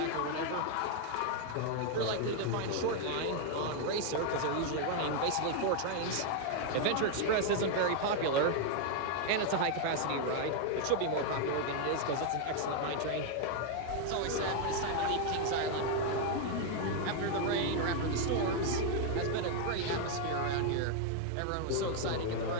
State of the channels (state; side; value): different; both; correlation 0.00